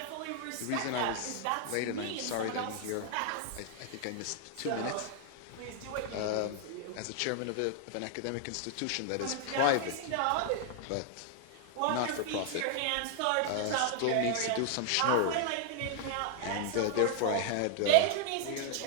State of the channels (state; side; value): different; both; correlation 0.00